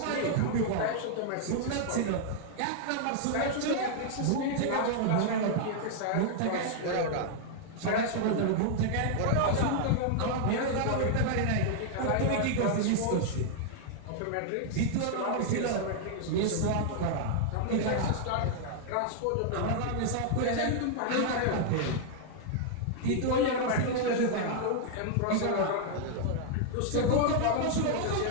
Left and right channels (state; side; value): different; both; correlation -0.01